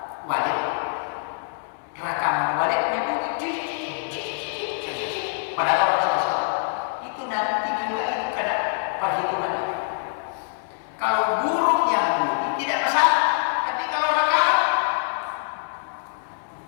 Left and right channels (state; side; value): silent; right; digital silence